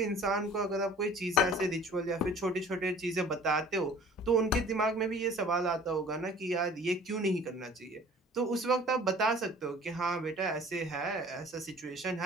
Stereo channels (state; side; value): normal; both; correlation 0.48